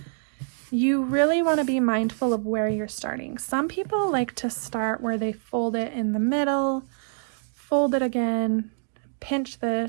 you really want to be mindful of where you're starting. Some people like to start where they fold it in the middle, fold it again, pinch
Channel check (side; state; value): left; silent; digital silence